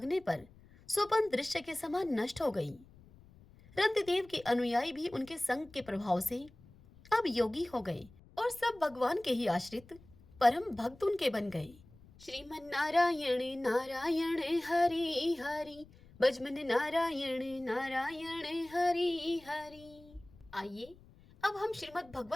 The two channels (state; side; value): noise; left; rumble, 24 dB below the sound